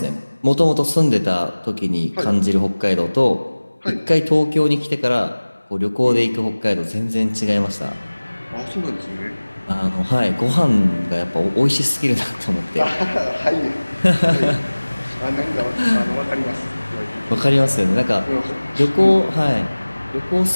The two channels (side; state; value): both; inverted; correlation -1.00